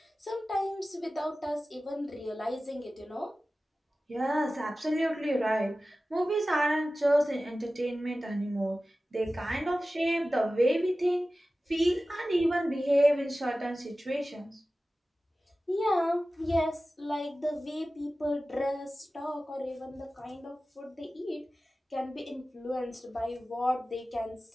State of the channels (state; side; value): normal; both; correlation 0.96